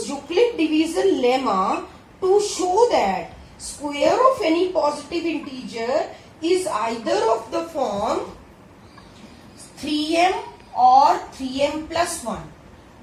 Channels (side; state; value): both; identical; correlation 1.00